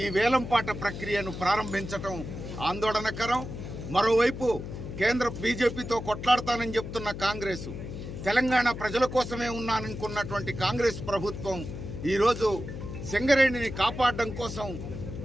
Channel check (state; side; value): noise; left; hum, 8 dB below the sound